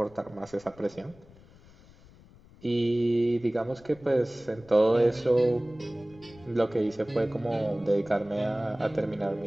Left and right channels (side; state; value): left; noise; rumble, 24 dB below the sound